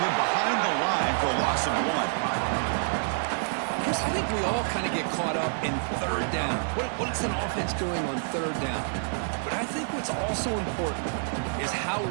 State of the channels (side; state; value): left; silent; digital silence